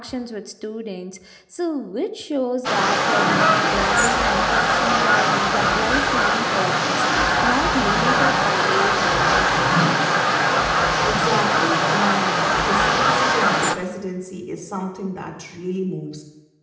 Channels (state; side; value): identical; both; correlation 1.00